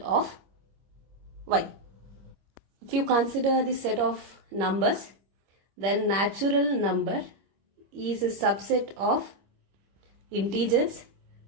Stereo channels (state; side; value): late; left; 25 ms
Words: Y. If you consider the set of numbers, then natural number is a subset of integers,